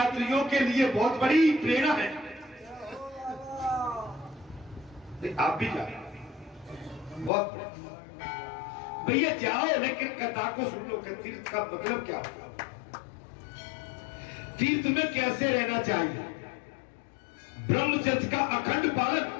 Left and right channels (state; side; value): drops out; right; at 7.3 s